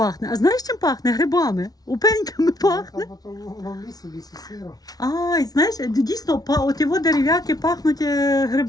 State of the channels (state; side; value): late; right; 0.19 ms